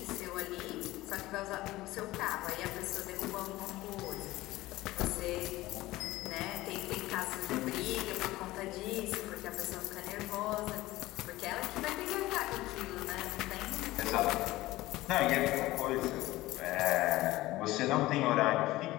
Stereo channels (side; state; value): right; quieter; 17.9 dB